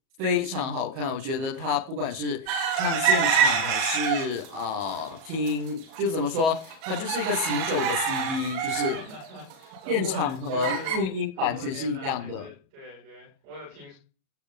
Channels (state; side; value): late; left; 37 ms